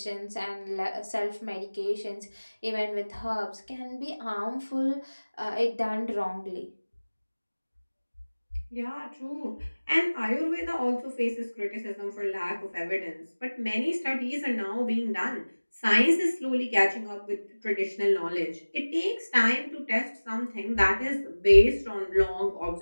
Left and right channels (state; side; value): inverted; both; correlation -1.00